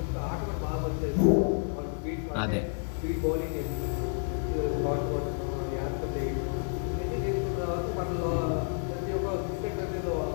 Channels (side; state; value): right; silent; digital silence